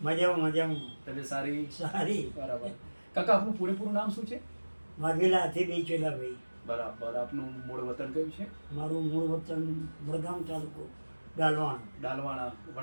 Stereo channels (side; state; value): both; inverted; correlation -1.00